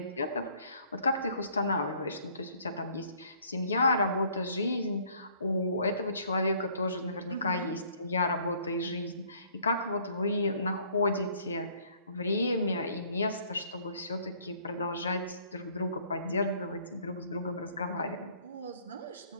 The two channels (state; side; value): inverted; both; correlation -0.60